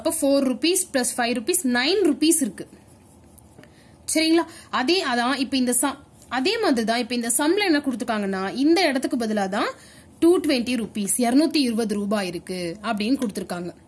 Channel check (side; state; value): both; identical; correlation 1.00